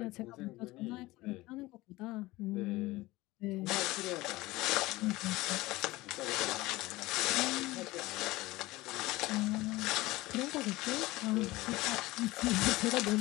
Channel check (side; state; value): right; quieter; 19.5 dB